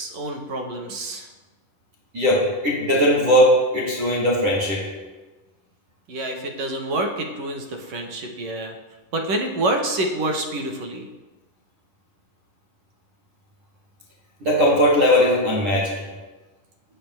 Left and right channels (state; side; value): late; left; 11 ms